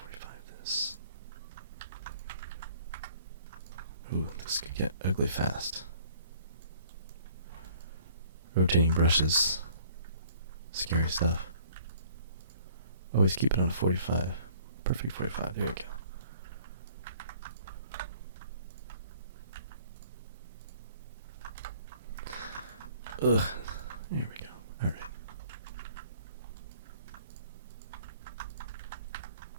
this. Ooh, this could get ugly fast. Rotating brushes. Scary stuff. Always keep it on 45. Perfect 45. There we go. Ugh. There we go. Alright.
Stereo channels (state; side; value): inverted; both; correlation -0.55